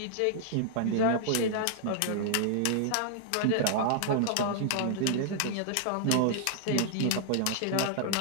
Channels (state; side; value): different; both; correlation -0.01